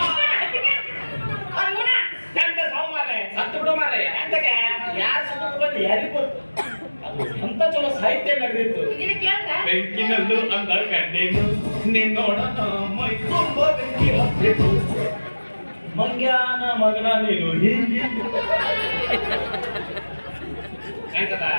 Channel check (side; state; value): both; inverted; correlation -1.00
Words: ಅಂತ ಚಲೋ ಸಾಹಿತ್ಯ ನಡೆದಿತ್ತು. ಬೆಂಕಿನಲ್ಲೂ ಅಂದ ಕಂಡೇನು ನಿನ್ನೋಡ ಮೈ ತುಂಬ ಬೆಂಕಿ ಹತ್ತಿತ್ತು ಮಂಗ್ಯಾನ ಮಗನ ನೀನು ಹೀಗೆ